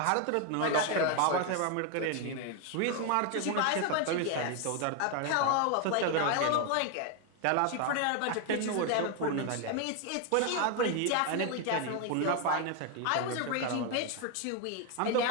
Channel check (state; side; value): different; both; correlation 0.01